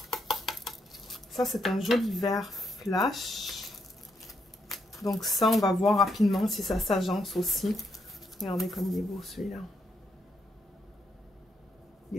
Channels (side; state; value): both; normal; correlation 0.78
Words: Ça c'est un joli vert flash. Donc ça on va voir rapidement si ça s'agence aussi. Regardez comme il est beau celui-là. Il